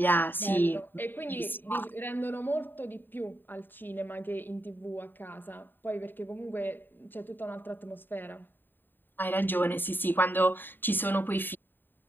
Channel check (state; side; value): late; right; 0.094 ms